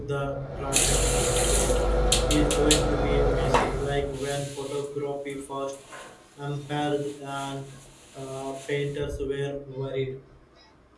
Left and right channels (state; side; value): identical; both; correlation 1.00